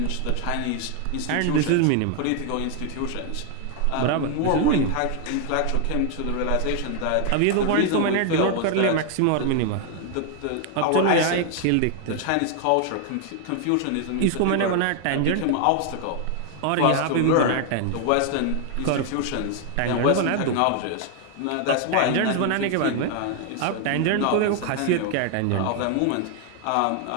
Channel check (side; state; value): both; different; correlation 0.00